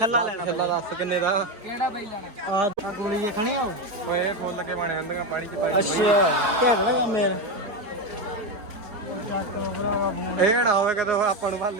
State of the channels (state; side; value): late; left; 4.8 ms